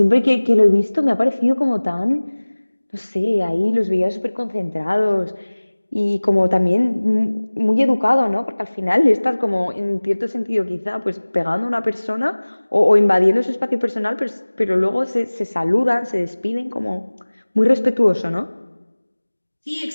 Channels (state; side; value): inverted; both; correlation -1.00